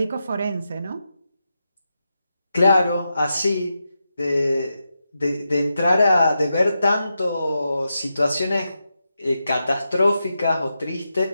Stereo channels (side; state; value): both; inverted; correlation -0.88